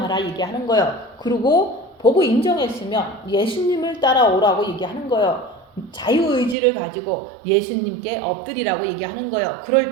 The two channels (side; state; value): left; drops out; at 6.6 s